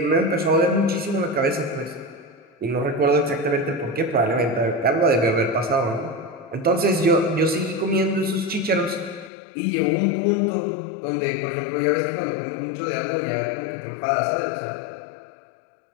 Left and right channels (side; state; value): right; drops out; at 9.3 s